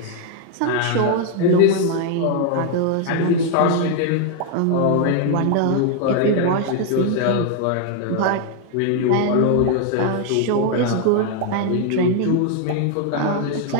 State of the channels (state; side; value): different; both; correlation 0.01